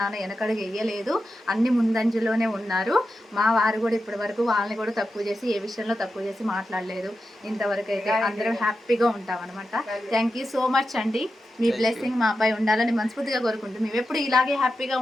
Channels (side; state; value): both; normal; correlation 0.90